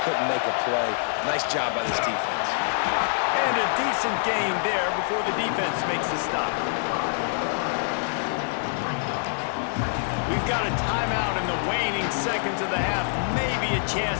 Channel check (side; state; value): right; silent; digital silence